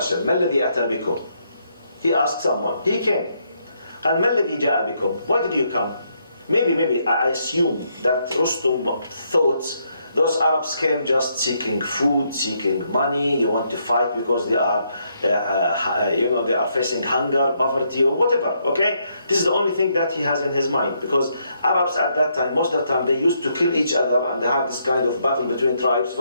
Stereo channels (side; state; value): both; inverted; correlation -0.75